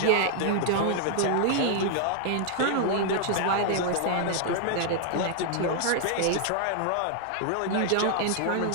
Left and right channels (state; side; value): different; both; correlation 0.00